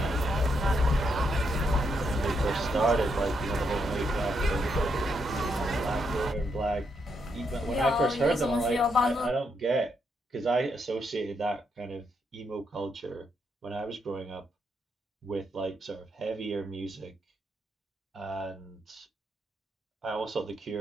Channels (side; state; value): both; normal; correlation 0.78